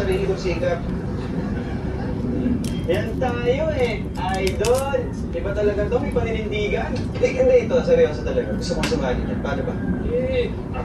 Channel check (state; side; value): identical; both; correlation 1.00